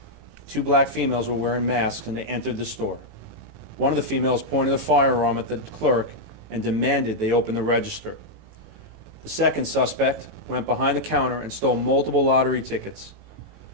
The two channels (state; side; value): late; left; 18 ms